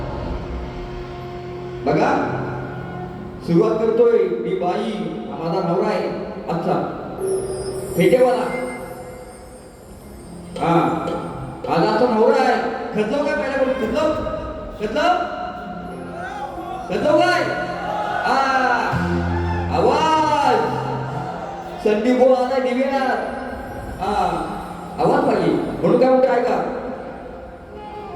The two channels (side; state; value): both; identical; correlation 1.00